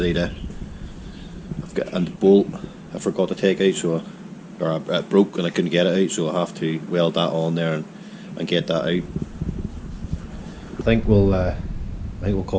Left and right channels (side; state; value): both; identical; correlation 1.00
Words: to, I've got a bolt I forgot to take out, or it broke and I couldn't get it out, so I have to weld that on there and get that out. I think we'll